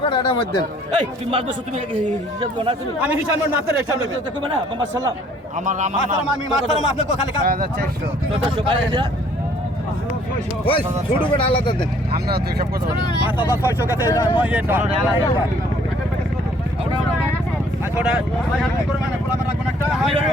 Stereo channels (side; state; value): both; normal; correlation 0.60